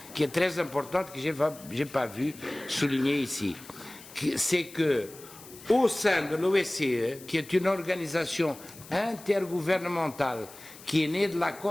qui est très importante, que je n'ai pas vu souligner ici. C'est que, au sein de l'OSCE, qui est une organisation intergouvernementale qui est née de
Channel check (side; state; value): left; noise; hiss, 19 dB below the sound